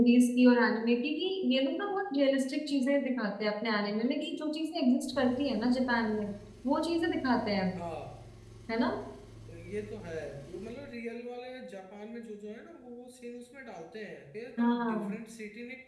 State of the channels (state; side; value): identical; both; correlation 1.00